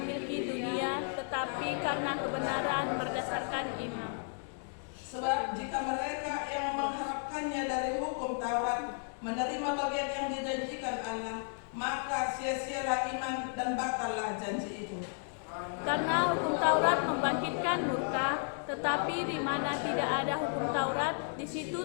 dunia, tetapi karena kebenaran berdasarkan iman. Sebab jika mereka yang mengharapkannya dari hukum Taurat menerima bagian yang dijanjikan Allah, maka sia-sialah iman dan batallah janji itu. Karena hukum Taurat membangkitkan murka, tetapi di mana tidak ada hukum Taurat, di situ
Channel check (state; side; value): silent; right; 55 dB below the other